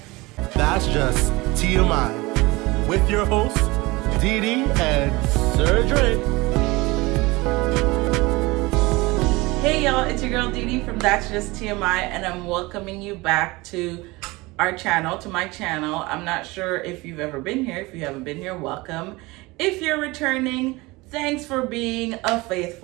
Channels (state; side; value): quieter; left; 22.5 dB